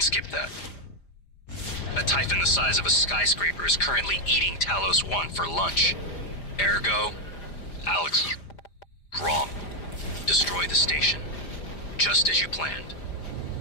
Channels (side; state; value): right; late; 5.0 ms